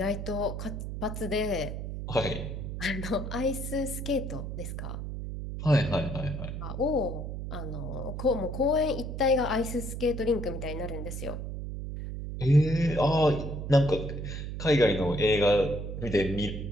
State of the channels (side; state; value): right; noise; hum, 6 dB below the sound